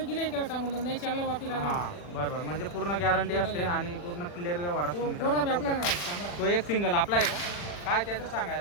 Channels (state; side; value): late; right; 40 ms